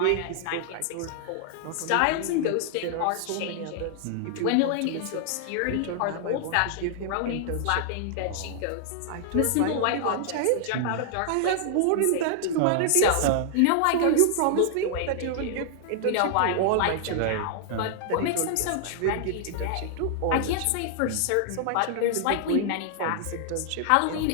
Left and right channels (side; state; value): both; different; correlation -0.01